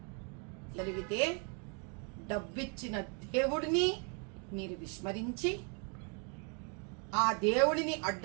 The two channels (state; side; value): quieter; left; 37.0 dB